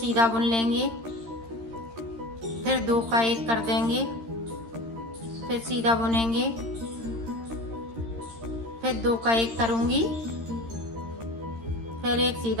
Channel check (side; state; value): left; late; 13 ms